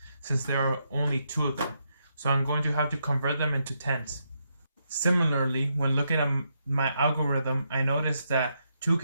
since there are only 2 of them. So I'm going to have to convert them into tens. Similarly, when looking at my algorithm, I noticed that 2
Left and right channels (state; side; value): inverted; both; correlation -0.80